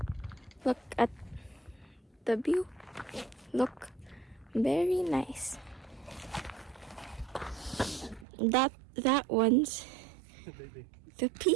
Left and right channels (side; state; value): left; drops out; at 8.2 s